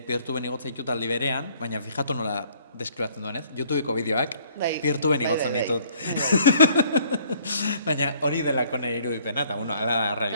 igotzen ditut aldi berean, baina fijatu nola deskribatzen duen, ez? YouTubeko bideoak peer-to-ben igotzen ditut. Baina hori delako nire irudipena, eta hala da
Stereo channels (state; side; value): inverted; both; correlation -0.60